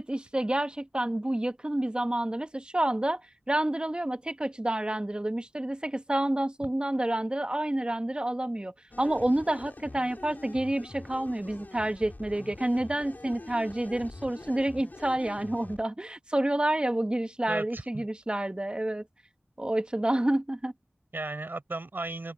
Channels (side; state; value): both; normal; correlation 0.97